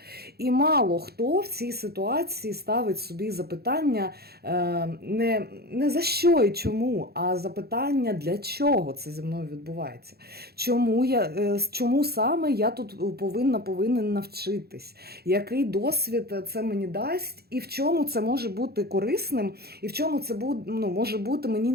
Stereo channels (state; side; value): late; left; 0.46 ms